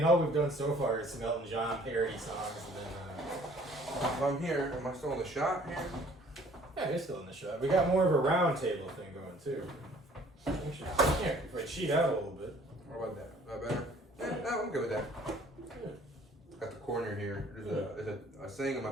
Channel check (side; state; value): both; normal; correlation 0.56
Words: all we've done so far is some Elton John parody songs and then. If I'm here, am I still in the shot here? Yeah, you're still in the shot. We got more of a round table thing going too. Yeah, if I cheat out a little bit. What about that? Is that better? Yeah, no, I'm good with that. Yeah. Got the corner here. There's a saying in